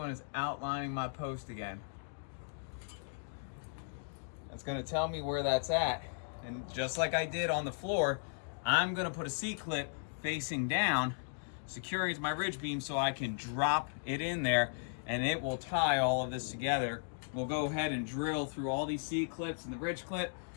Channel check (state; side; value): silent; right; digital silence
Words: is outlining my post again. That's going to tell me where that's at. And just like I did on the floor, I'm going to put a C-clip facing down, securing my ridge beam so I can drop it in there and it will tie all of this together. We'll go ahead and drill through all these C-clips and the ridge clip,